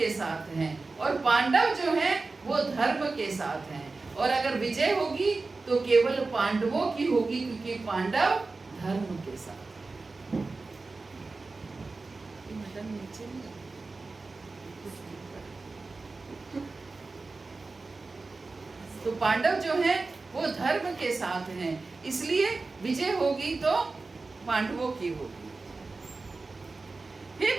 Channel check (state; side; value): quieter; left; 3.7 dB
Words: साथ हैं, और पांडव जो हैं वो धर्म के साथ हैं। और अगर विजय होगी तो केवल पांडवों की होगी, क्योंकि पांडव धर्म के साथ। तो पांडव जो हैं वो धर्म के साथ हैं, इसलिए विजय होगी तो पांडवों की होगी। हे